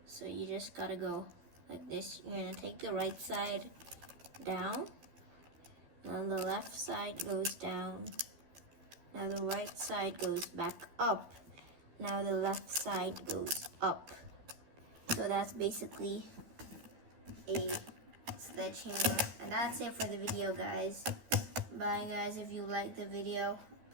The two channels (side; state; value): left; late; 13 ms